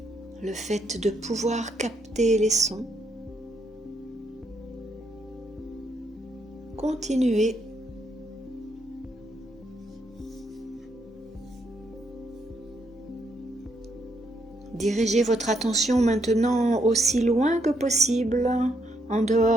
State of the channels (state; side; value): normal; both; correlation 0.75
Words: le fait de pouvoir capter les sons. Continuez. Dirigez votre attention maintenant aussi loin que possible, en